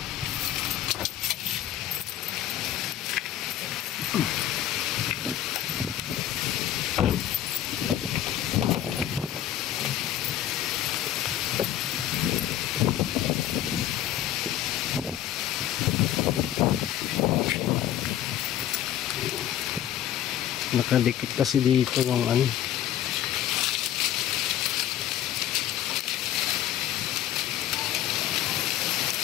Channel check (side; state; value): right; quieter; 11.8 dB